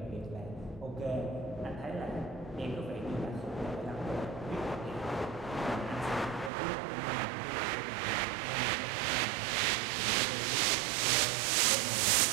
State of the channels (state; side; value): drops out; left; at 6.5 s